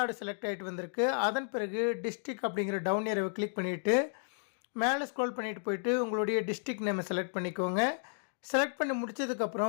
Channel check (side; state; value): right; silent; digital silence